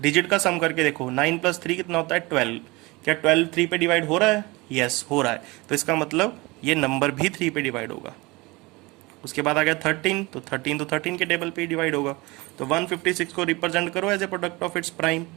का सम करके देखो, 9 + 3 कितना होता है? 12। क्या 12 3 पे डिवाइड हो रहा है? यस हो रहा है, तो इसका मतलब ये नंबर भी 3 पे डिवाइड होगा। उसके बाद आ गया 13, तो 13 के टेबल पे ही डिवाइड होगा। तो 156 को रिप्रेजेंट करो as a product of its prime,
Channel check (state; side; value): quieter; left; 23.8 dB